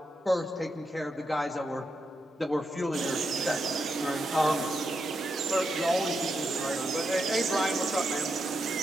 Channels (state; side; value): normal; both; correlation 0.84